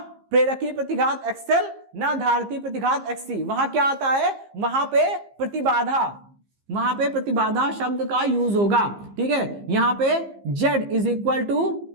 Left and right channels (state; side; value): late; left; 15 ms